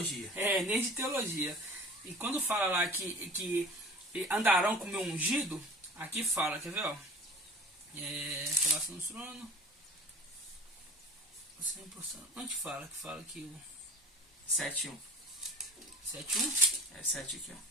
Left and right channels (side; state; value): both; normal; correlation 0.41